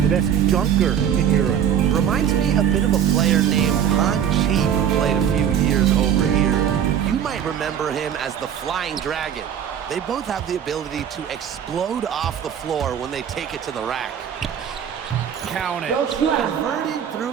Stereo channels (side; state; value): left; quieter; 8.9 dB